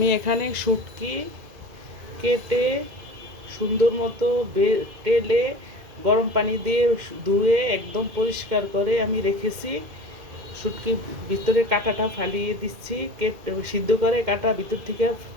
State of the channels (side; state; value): left; late; 2.2 ms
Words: এখানে শুটকি কেটে সুন্দর মতো তেলে গরম পানি দিয়ে ধুয়ে একদম পরিষ্কার করে আমি রেখেছি। শুটকি ভিতরে কাঁটাটা ফালিয়ে দিচ্ছি, সিদ্ধ করে কাঁটা ভিতর থেকে